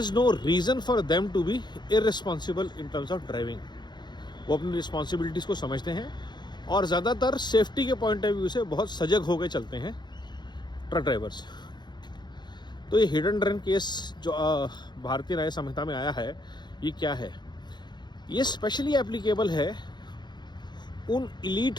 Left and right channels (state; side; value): late; right; 0.21 ms